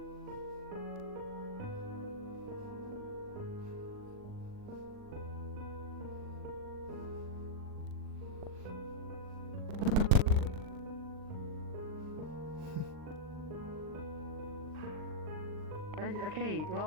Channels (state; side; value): late; left; 39 ms